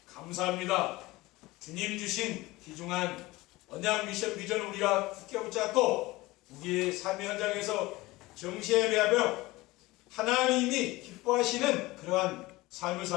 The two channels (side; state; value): right; quieter; 20.2 dB